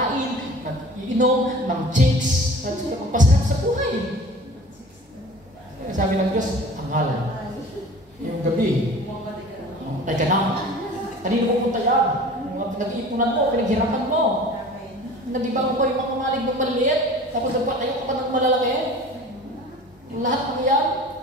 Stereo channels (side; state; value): both; normal; correlation 0.42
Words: nag-iinom, ng chicks, at magpasarap sa buhay. Sabi ng Diyos, hangal. Yung gabi, ay ka na. Kanino pupunta yan? Nag-iipunan mo, pinaghirapan mo. Nag-ibang ko yung mga kamalig ng maliit, tapos nagpatayo ka pa ng malalaki. Yung lahat ng yan,